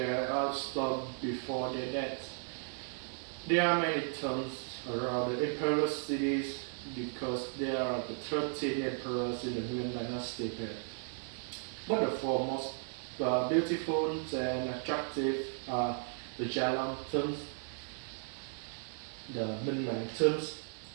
stone before their death. There are many tombs around the emperor cities because there are the 13 emperors in the Nguyen dynasty period. But the four most beautiful and attractive are the Jalan tombs, the Minh Mạng tombs,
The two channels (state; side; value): silent; left; 54 dB below the other